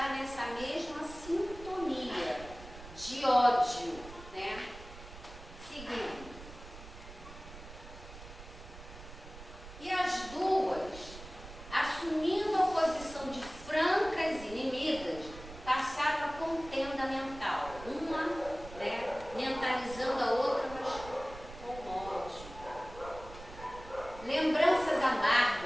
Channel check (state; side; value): noise; right; rumble, 15 dB below the sound